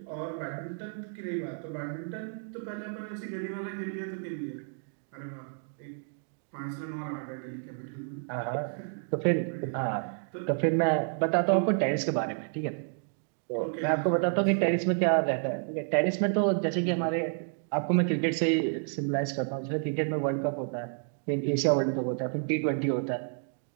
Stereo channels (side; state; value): left; silent; 58 dB below the other